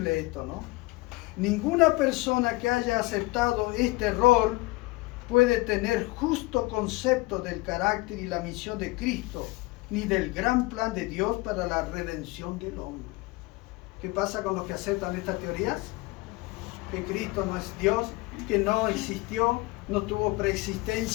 esto, ¿no? Ninguna persona que haya aceptado este error puede tener justo concepto del carácter y la misión de Cristo, ni del gran plan de Dios para la redención del hombre. ¿Qué pasa con los que aceptan estas teorías? Que Cristo no es Dios, que no existió, no tuvo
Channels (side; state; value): right; quieter; 22.2 dB